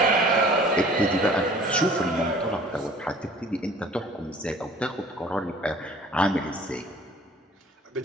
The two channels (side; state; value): both; normal; correlation 0.50